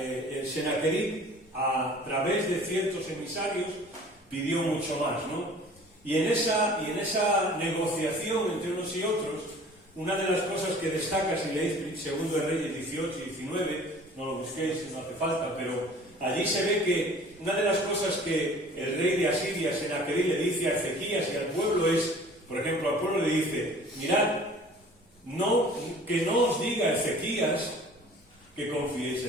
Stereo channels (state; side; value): normal; both; correlation 0.48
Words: Sennacherib, a través de ciertos emisarios, pidió mucho más, ¿no? Y en esa negociación entre unos y otros, una de las cosas que destaca, si leéis 2 de Reyes 18 y 19, no lo busquéis, no hace falta, pero allí se ve que una de las cosas que el rey de Asiria, Sennacherib, le dice a Ezequías y al pueblo es, por ejemplo, al pueblo le dice, mirad, que no os diga Ezequías que confiéis